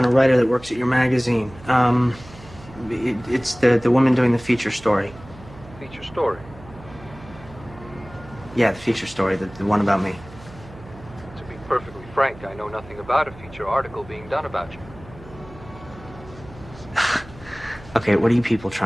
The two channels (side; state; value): right; noise; hum, 19 dB below the sound